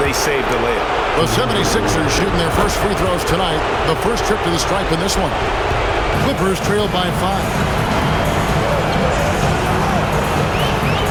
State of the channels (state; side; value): identical; both; correlation 1.00